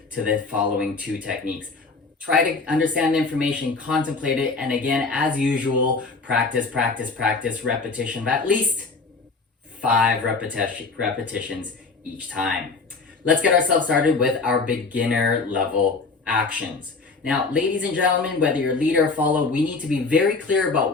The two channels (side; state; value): right; quieter; 4.1 dB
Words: to the following 2 techniques. Try to understand the information, contemplate it, and again, as usual, practice, repetition of at least 5 repetitions each time. Let's get ourselves started with our beginner level actions. Now, ladies and gentlemen, whether you're lead or follow, we need to be very clear